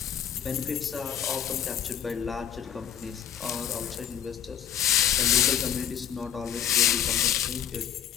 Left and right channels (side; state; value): right; quieter; 9.3 dB